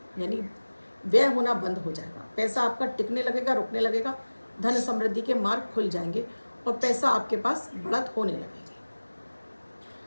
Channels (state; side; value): inverted; both; correlation -1.00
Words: यानी व्यय होना बंद हो जाएगा, पैसा आपका टिकने लगेगा, रुकने लगेगा, धन समृद्धि के मार्ग खुल जाएंगे और पैसा आपके पास बढ़त होने लगेगी।